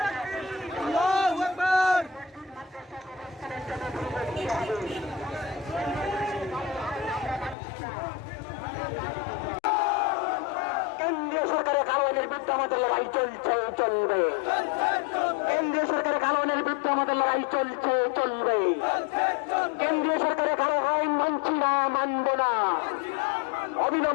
কেন্দ্রীয় সরকারের কারণের বিরুদ্ধে আমাদের লড়াই চলছে, চলবে। কেন্দ্রীয় সরকারের কারণের বিরুদ্ধে আমাদের লড়াই চলছে, চলবে। কেন্দ্রীয় সরকারের কারো আইন মানছি না, মানবো না।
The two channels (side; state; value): right; drops out; at 7.6 s